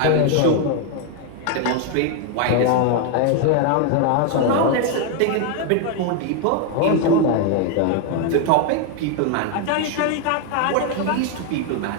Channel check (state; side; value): different; both; correlation 0.01